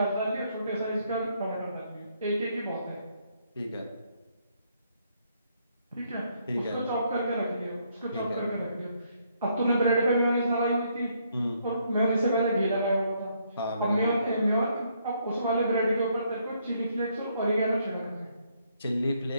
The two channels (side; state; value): both; inverted; correlation -0.72